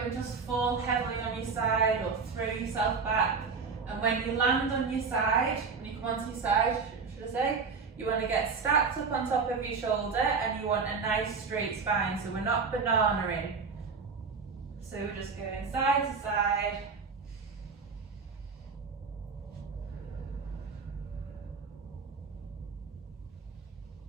just fall heavily on your side or throw yourself back. And when you land on your side, when you come onto your side, should I say, you want to get stacked up on top of your shoulder, and you want a nice straight spine, so we're not banana-ing. So we're just going side to side.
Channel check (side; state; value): left; quieter; 5.0 dB